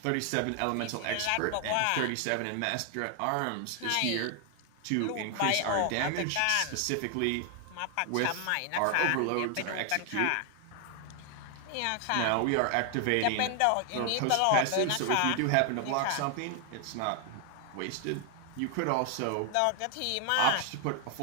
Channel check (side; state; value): both; different; correlation 0.00